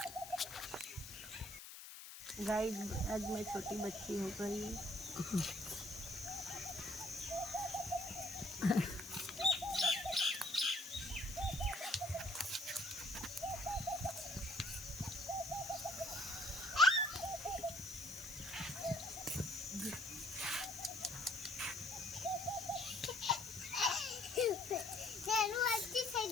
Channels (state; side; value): noise; left; hiss, 12 dB below the sound